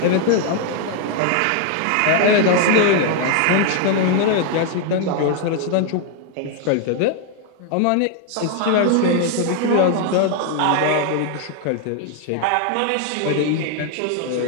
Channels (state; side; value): different; both; correlation 0.00